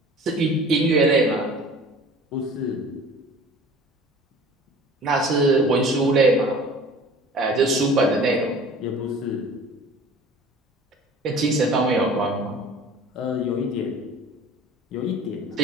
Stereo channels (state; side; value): normal; both; correlation 0.44